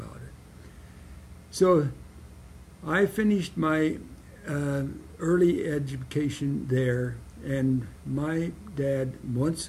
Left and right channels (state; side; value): identical; both; correlation 1.00